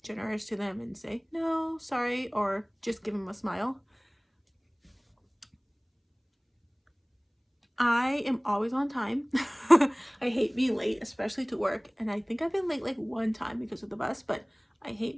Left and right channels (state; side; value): identical; both; correlation 1.00